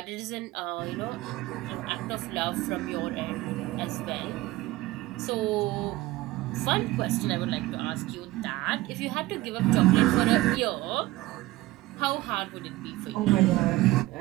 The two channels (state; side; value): quieter; left; 18.2 dB